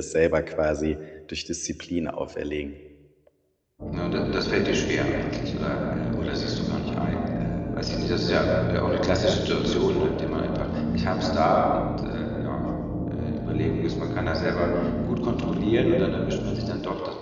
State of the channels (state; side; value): identical; both; correlation 1.00